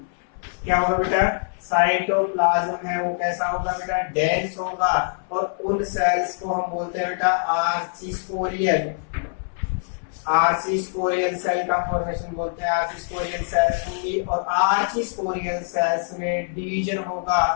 क्या होगा बेटा, साइटोप्लाज्म है वो कैसा होगा बेटा, डेंस होगा। और उन सेल्स को हम बोलते हैं बेटा आर्चिस्पोरियल। आर्चिस्पोरियल सेल का फॉर्मेशन बोलते हैं, आर्चिस्पोरियल सेल्स होंगी, और आर्चिस्पोरियल सेल्स में डिवीजन होगा।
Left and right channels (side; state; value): right; silent; 63 dB below the other